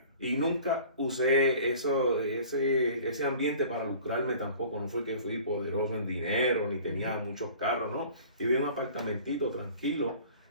Y nunca usé ese ambiente para lucrarme tampoco. No fue que fui poderoso en dinero, ni tenía muchos carros, no. Vivía en un apartamentito tranquilo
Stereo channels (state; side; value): inverted; both; correlation -0.46